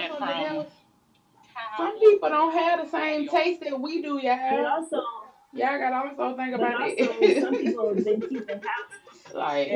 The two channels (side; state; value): both; identical; correlation 1.00